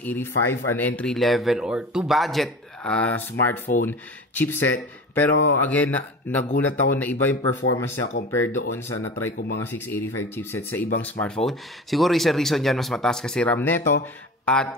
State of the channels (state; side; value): normal; both; correlation 0.34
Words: an entry level or to budget smartphone chipset. Pero again, nagulat ako na iba yung performance niya compared doon sa na-try ko mga 685 chipset sa ibang smartphone. Siguro isa reason dyan, mas mataas kasi RAM neto